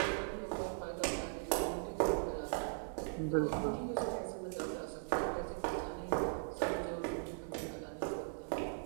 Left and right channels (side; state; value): left; silent; digital silence